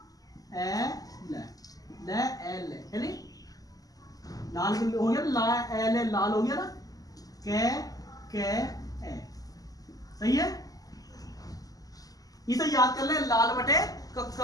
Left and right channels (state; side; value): late; right; 0.17 ms